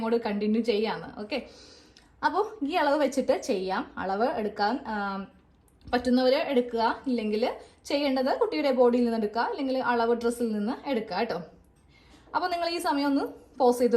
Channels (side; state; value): both; identical; correlation 1.00